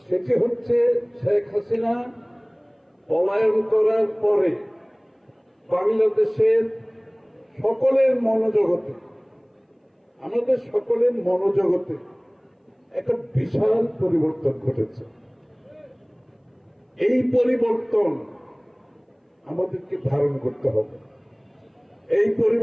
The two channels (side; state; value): both; identical; correlation 1.00